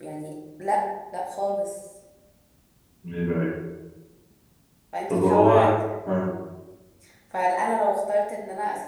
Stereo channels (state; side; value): identical; both; correlation 1.00